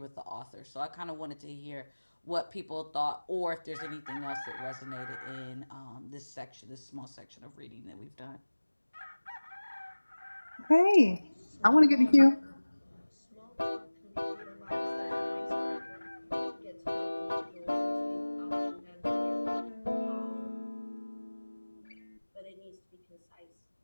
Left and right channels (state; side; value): inverted; both; correlation -1.00